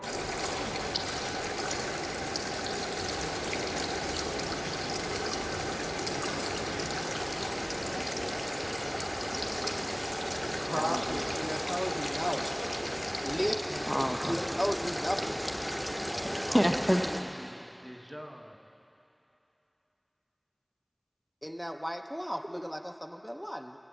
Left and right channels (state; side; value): identical; both; correlation 1.00